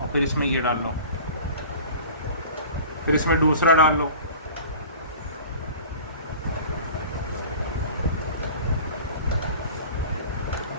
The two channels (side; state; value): both; inverted; correlation -0.41